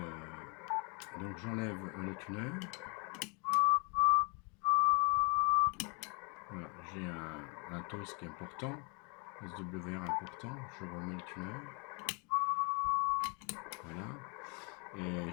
donc j'enlève le tuner. Voilà, j'ai un toast qui est important, SWR important. Je remets le tuner. Voilà. Et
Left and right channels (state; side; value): quieter; right; 33.4 dB